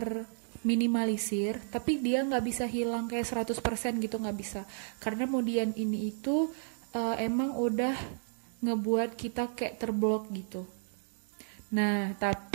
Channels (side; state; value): left; silent; digital silence